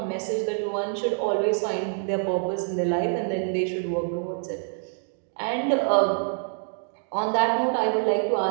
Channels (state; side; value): silent; left; digital silence